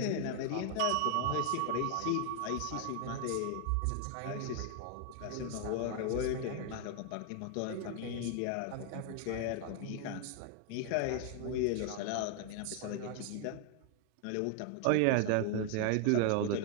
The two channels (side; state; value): both; different; correlation 0.00